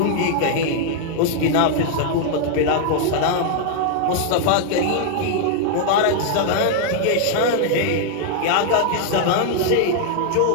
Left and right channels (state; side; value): different; both; correlation 0.00